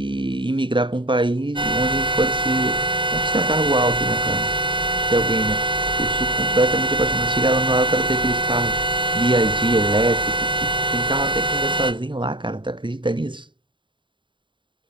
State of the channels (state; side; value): late; left; 0.23 ms